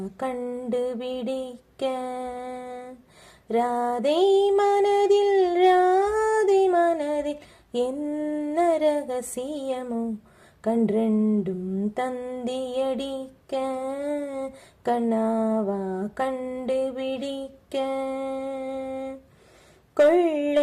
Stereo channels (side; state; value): both; identical; correlation 1.00